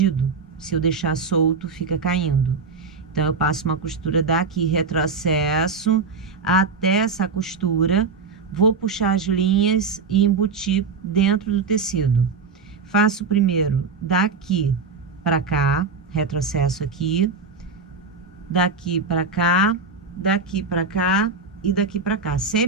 Se eu deixar solto, fica caindo. Então, eu passo uma costura daqui, retrocesso até essa costura, vou puxar as linhas e embutir dentro do tecido. Faço primeiro daqui para cá, retrocesso aqui, daqui para cá, daqui para cá e daqui para cá,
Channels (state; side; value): quieter; left; 4.6 dB